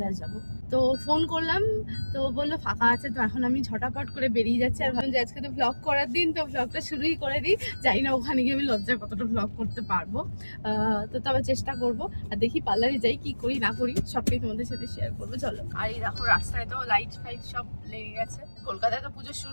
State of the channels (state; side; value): inverted; both; correlation -1.00